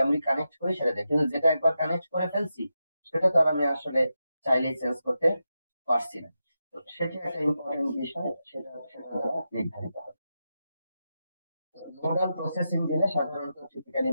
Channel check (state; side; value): inverted; both; correlation -0.88